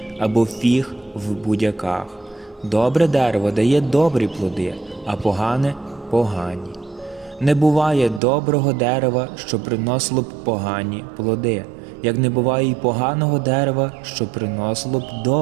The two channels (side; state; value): left; drops out; at 8.2 s